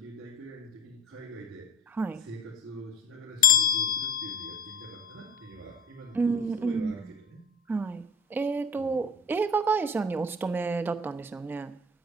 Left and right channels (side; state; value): both; normal; correlation 0.40